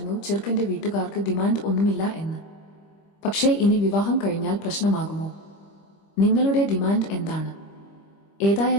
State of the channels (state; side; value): late; right; 25 ms